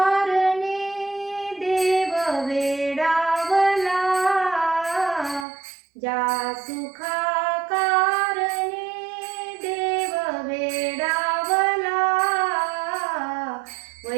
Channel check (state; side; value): drops out; left; at 5.5 s